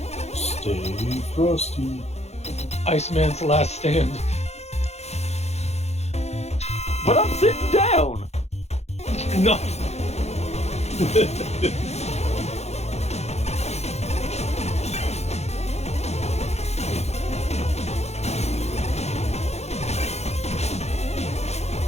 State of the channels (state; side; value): late; right; 0.31 ms